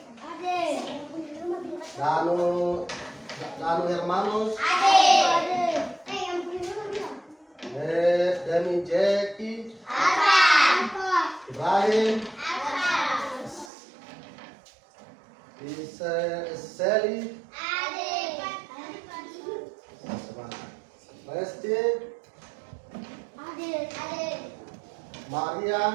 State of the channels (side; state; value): left; drops out; at 13.7 s